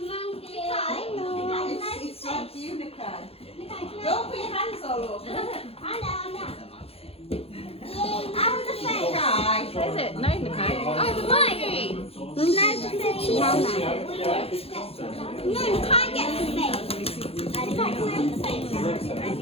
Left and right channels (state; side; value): late; right; 0.28 ms